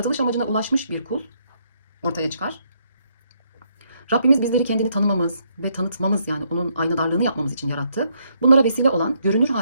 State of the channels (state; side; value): inverted; both; correlation -0.73